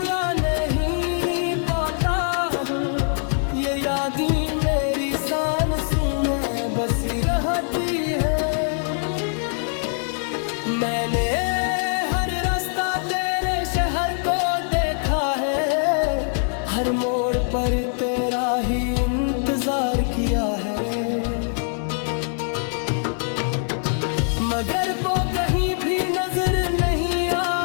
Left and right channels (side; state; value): right; silent; 63 dB below the other